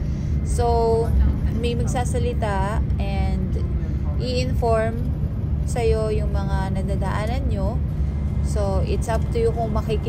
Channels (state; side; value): identical; both; correlation 1.00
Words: So, may magsasalita and i-inform sa'yo yung mga nadadaanan nyo. So, it's up to you kung